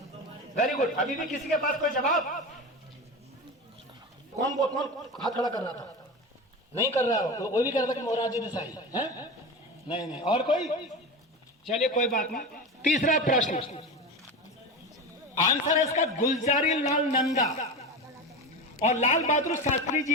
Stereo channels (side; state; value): both; normal; correlation 0.24